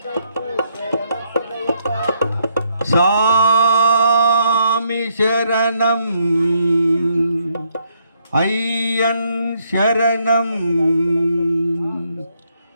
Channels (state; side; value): inverted; both; correlation -0.74